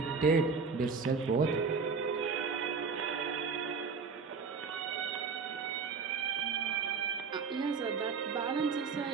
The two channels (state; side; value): quieter; left; 5.2 dB